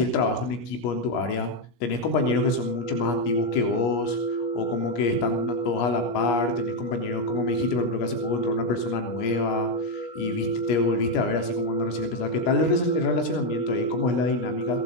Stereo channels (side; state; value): right; late; 17 ms